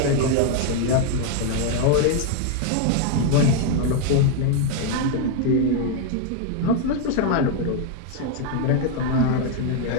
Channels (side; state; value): both; different; correlation 0.00